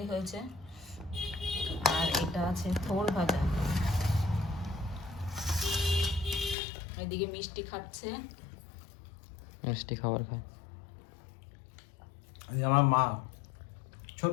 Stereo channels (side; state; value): right; drops out; at 6.6 s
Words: হয়েছে, আর এটা আছে থোর ভাজা। এদিকে মিষ্টি খাচ্ছে। মিষ্টি খাবার খায়। এই আমার মা,